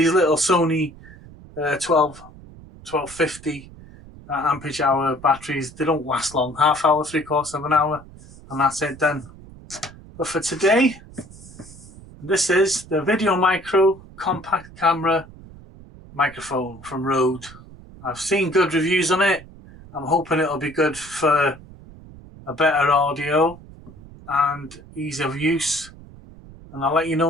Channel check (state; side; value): noise; right; rumble, 19 dB below the sound